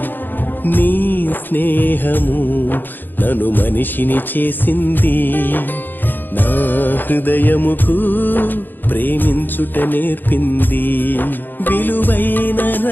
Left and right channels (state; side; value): late; right; 0.091 ms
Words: నీ స్నేహము నన్ను మనిషిని చేసింది, నా హృదయముకు ప్రేమించుట నేర్పింది. విలువైన